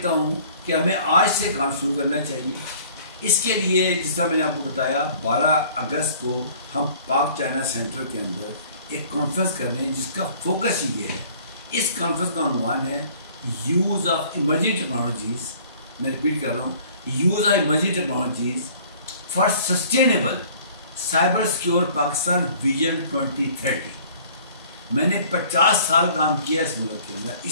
ہوں کہ ہمیں آج سے کام شروع کرنا چاہیے. اس کے لیے جس طرح میں نے آپ کو بتایا 12 اگست کو ہم پاک چائنا سینٹر کے اندر ایک کانفرنس کر رہے ہیں جس کا فوکس یہ ہے. اس کانفرنس کا عنوان ہے یوز آف ایمرجنگ ٹیکنالوجیز. میں ریپیٹ کر رہا ہوں، use of emerging technologies for sustainable cyber secure Pakistan vision 2030. میں نے 50 سال کام کیا اس ملک کے اندر،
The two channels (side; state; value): both; inverted; correlation -0.52